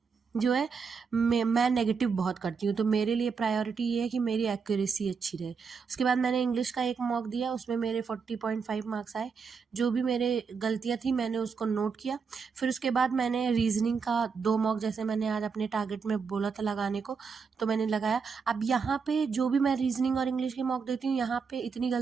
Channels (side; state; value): left; quieter; 5.6 dB